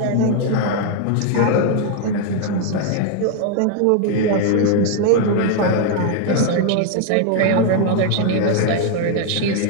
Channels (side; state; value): both; different; correlation 0.00